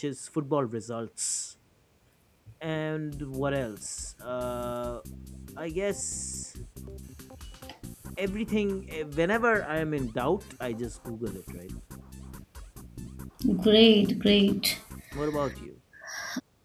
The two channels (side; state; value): both; identical; correlation 1.00